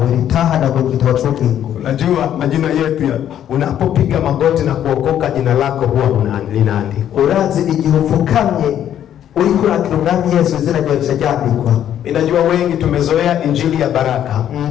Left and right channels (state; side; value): quieter; right; 10.5 dB